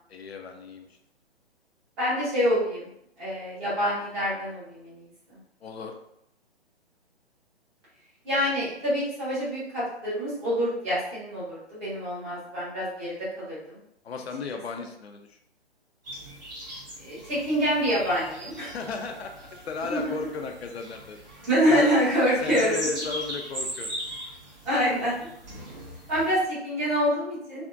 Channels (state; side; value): normal; both; correlation 0.39